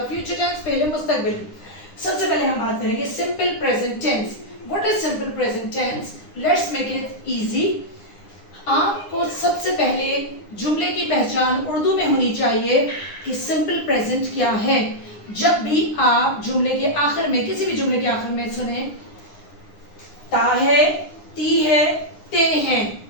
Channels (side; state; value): right; late; 9.8 ms